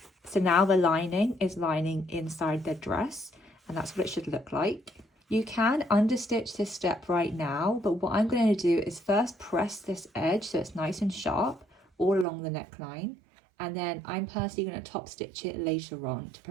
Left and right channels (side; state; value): left; drops out; at 12.2 s